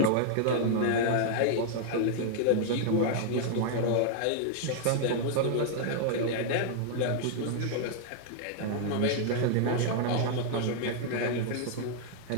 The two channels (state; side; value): different; both; correlation -0.01